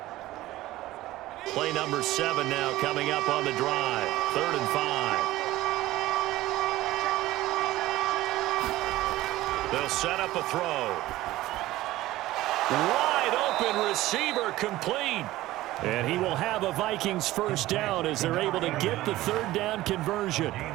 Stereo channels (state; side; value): quieter; left; 16.5 dB